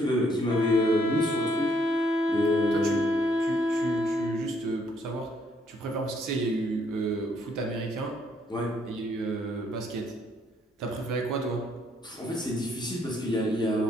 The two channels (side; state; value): both; normal; correlation 0.69